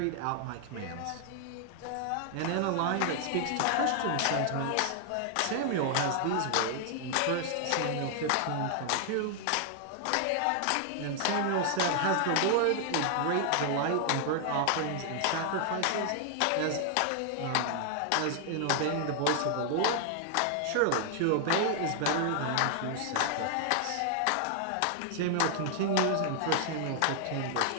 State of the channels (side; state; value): both; different; correlation 0.00